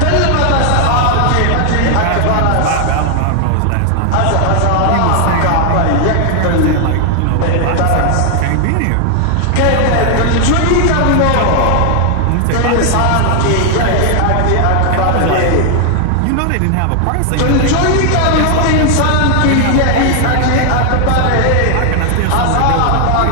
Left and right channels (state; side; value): different; both; correlation 0.00